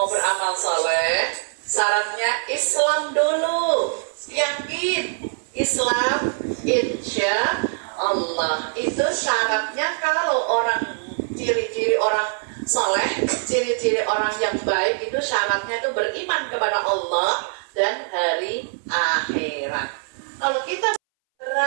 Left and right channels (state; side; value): silent; left; 62 dB below the other